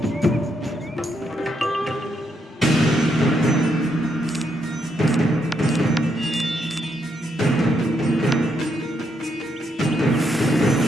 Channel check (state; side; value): normal; both; correlation 0.77